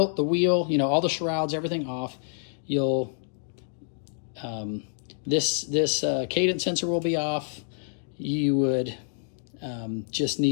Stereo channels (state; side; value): silent; right; digital silence